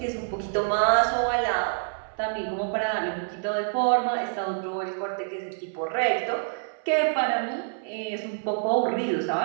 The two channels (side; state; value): left; silent; 60 dB below the other